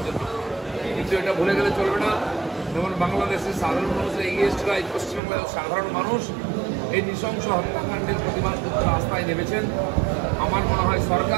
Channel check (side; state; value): left; drops out; at 5.2 s